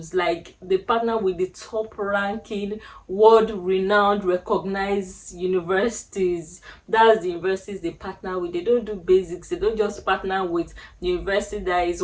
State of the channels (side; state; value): both; identical; correlation 1.00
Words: Like, they partner with the top ranking, world renowned, recognized universities. That's the universities they partner with. They don't do basics. They don't just partner with the university that is